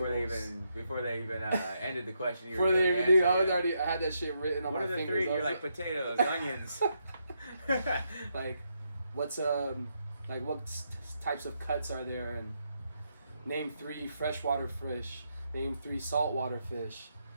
Before they even ended the question, before they even knew, I had that shit written on my fingers. What are the 3? You're like potatoes, onions. Like, what's what types of cuts are there? And name 3 freshwater fish. Name 3 saltwater fish.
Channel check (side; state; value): both; inverted; correlation -0.80